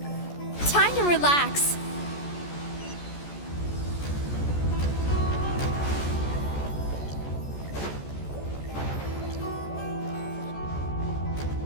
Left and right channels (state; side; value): late; right; 14 ms